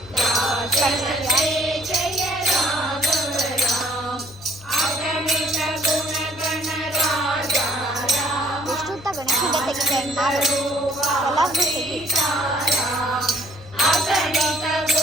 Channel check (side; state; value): both; normal; correlation 0.61